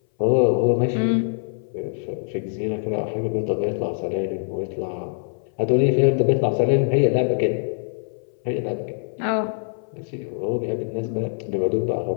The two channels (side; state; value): right; silent; 59 dB below the other